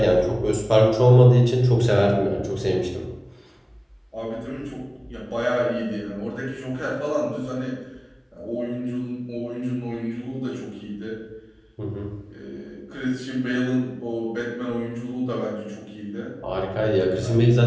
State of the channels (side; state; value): both; identical; correlation 1.00